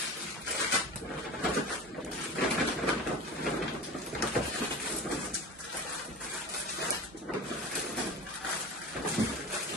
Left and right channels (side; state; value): both; normal; correlation 0.32